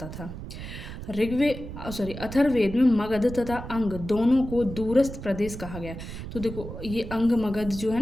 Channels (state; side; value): noise; right; rumble, 10 dB below the sound